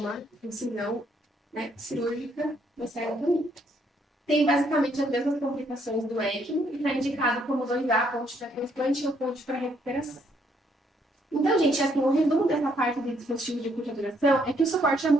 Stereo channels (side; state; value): both; normal; correlation 0.70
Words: incisão, né, cirúrgica da esterotomia. Tem basicamente as mesmas complicações do ECMO e está indicado como 2A, ponte para transplante ou ponte para recuperação. Então, gente, assim, o resumo dessa parte de dispositivo de curta duração é que o suporte é